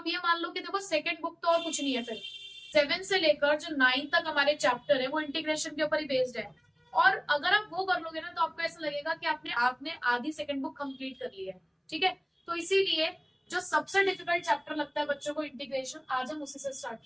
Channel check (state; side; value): identical; both; correlation 1.00